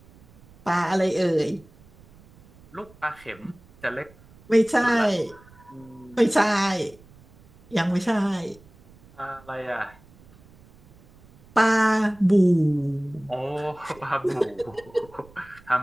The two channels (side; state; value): right; noise; rumble, 26 dB below the sound